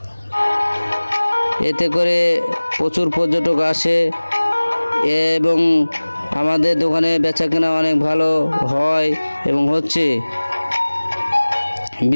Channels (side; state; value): both; inverted; correlation -1.00